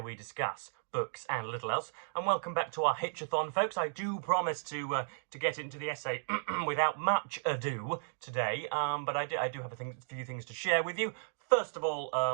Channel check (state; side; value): silent; left; digital silence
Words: we discuss books and little else. And welcome back to our Hitch-athon, folks. I do promise to get into the essay without much ado today, but I do have a few things to share with you. First of